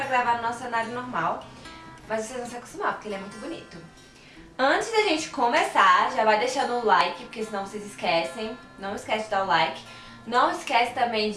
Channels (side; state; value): both; identical; correlation 1.00